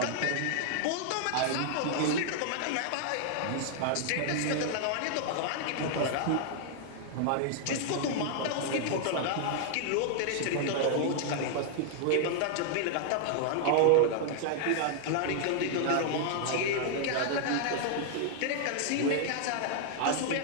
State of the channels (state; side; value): different; both; correlation 0.00